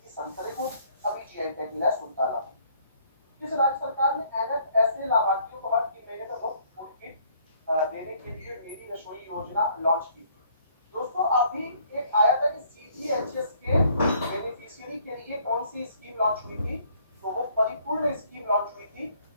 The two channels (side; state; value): both; inverted; correlation -0.62